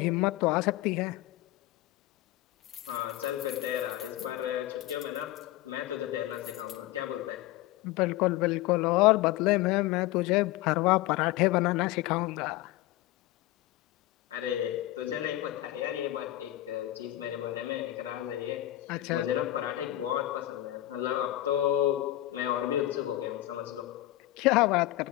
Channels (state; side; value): quieter; right; 15.8 dB